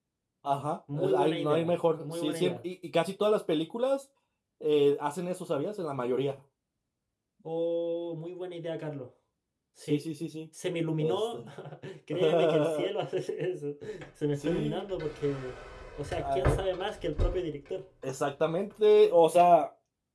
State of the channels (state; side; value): identical; both; correlation 1.00